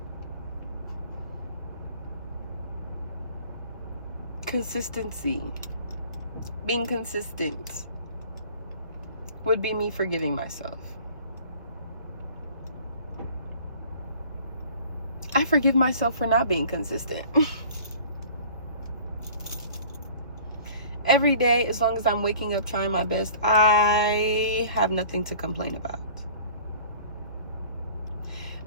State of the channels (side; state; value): both; inverted; correlation -0.48